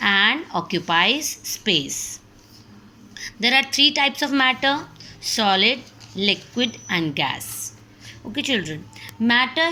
and occupies space. There are three types of matter: solid, liquid, and gas. Okay, children. Matter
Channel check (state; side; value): identical; both; correlation 1.00